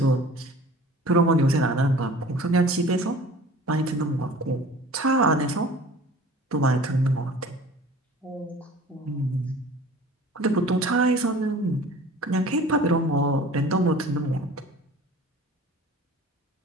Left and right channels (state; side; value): normal; both; correlation 0.44